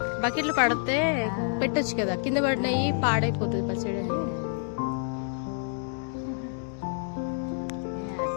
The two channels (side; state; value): right; silent; 59 dB below the other